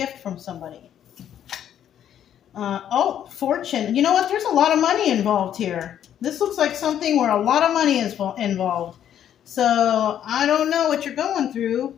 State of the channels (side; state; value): right; quieter; 10.1 dB